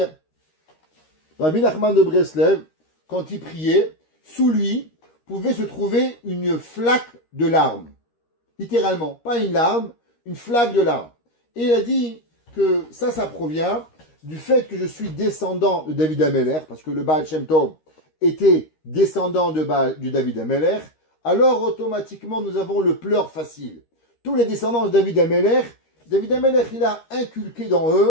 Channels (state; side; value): late; right; 13 ms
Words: Rabbi Nachman de Breslev, quand il priait, sous lui pouvait se trouver une flaque de larmes. Littéralement, pas une larme, une flaque de larmes. Et il a dit que ça provient du fait que je suis descendant de David Amelech, parce que le Baal Shem Tov était descendant du David Amelech, alors automatiquement nous avons le pleur facile. Tous les descendants de David Amelech, il a inculqué dans